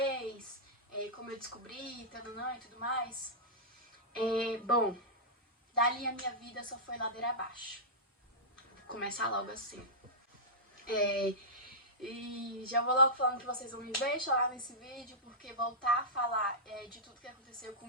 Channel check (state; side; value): normal; both; correlation -0.13